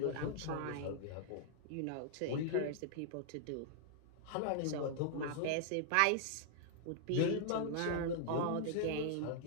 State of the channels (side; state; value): both; different; correlation -0.01